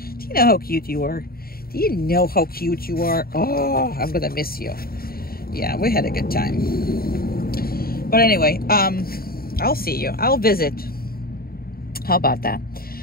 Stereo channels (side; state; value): right; late; 0.43 ms